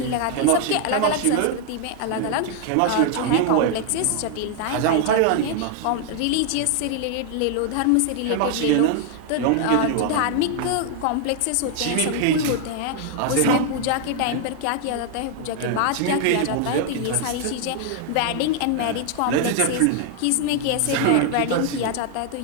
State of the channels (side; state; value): both; different; correlation 0.00